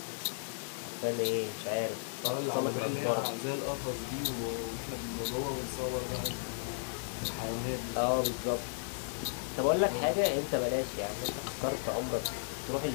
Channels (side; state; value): right; silent; digital silence